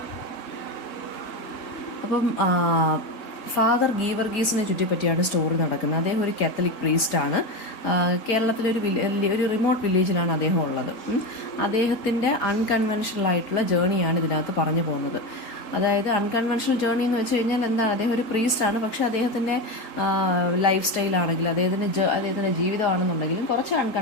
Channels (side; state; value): right; late; 4.3 ms